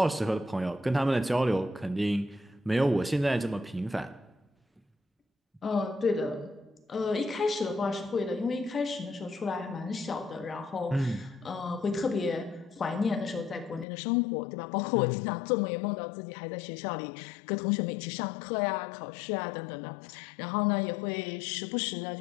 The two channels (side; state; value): right; drops out; at 13.9 s